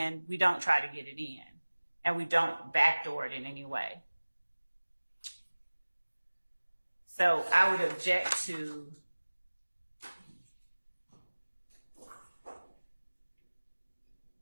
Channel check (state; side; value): inverted; both; correlation -1.00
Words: we don't try to get it in, and we don't backdoor it in any way. So I would object to